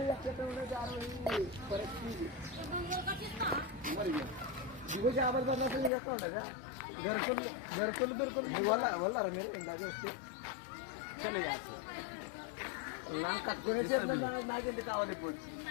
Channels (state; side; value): drops out; right; at 5.9 s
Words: ఎక్కడ जारो परिस्थिती दिवस आवाज बदलायचं येतो ना घरकुल बिरकुल वल्ला रे मेरे इंदागे वस्ती चलो यार नाम कटकोने చేత నాగేంటి కావాలి ఇప్పుడు